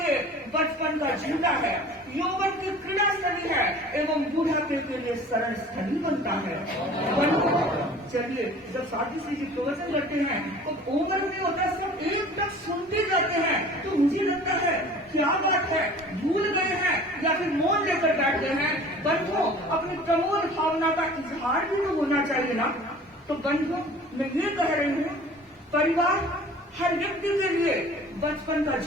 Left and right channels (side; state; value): both; normal; correlation 0.45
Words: बचपन का झूला है, यौवन की क्रीड़ा स्थली है एवं बुढ़ापे के लिए शरण स्थली बनता है। चलिए, जब साथी श्री जी प्रवचन करते हैं तो उम्र में होता है, सब एक तक सुनते जाते हैं, तो मुझे लगता है क्या बात है, भूल गए हैं या फिर मौन लेकर बैठ गए हैं। बंधुओं, अपनी प्रमोद भावना का इजहार भी तो होना चाहिए ना। तो बंधुओं, मैं ये कह रही हूँ, परिवार हर व्यक्ति के लिए बचपन का